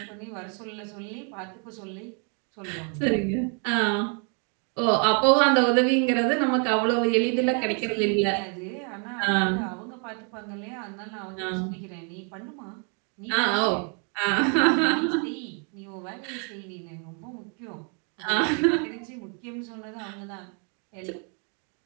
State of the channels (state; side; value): quieter; left; 39.3 dB